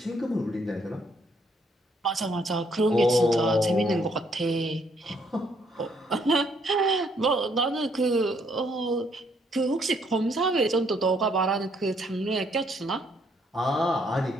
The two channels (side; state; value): both; normal; correlation 0.69